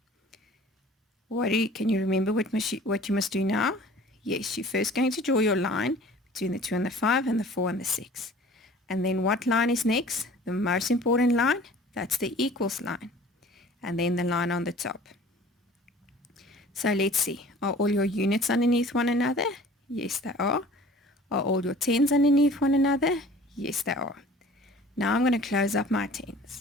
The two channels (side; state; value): both; normal; correlation 0.47